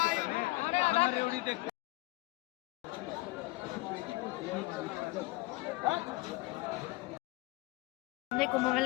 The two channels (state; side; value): quieter; right; 21.5 dB